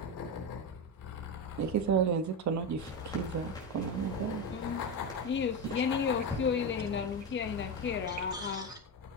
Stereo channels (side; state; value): both; normal; correlation 0.14